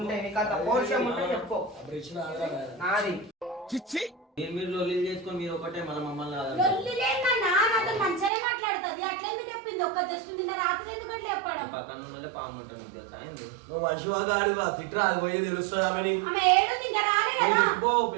నాది మీరు లొల్లి చేసుకొని మీరు ఒకటే మన మమ్మల్ని మంచిగానే మాట్లాడుతుంది. అట్లా ఎందుకు చెప్పింది? ఒక్క జస్ట్ నిన్న రాత్రి ఎందుకు అట్లా చెప్పడం? పక్కన ఉన్న పాము ఉంటుంది నీకు తెలుసా? నువ్వు మనిషి వాడు తిట్టరా, అది పోయి తెలుస్తుంది. ఆమె ఏడుంది ఇంకా రాలే కదా.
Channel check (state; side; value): drops out; left; at 8.3 s